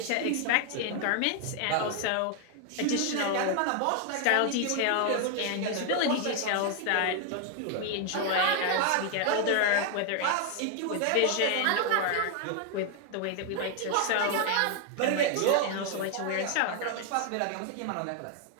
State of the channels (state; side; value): different; both; correlation 0.00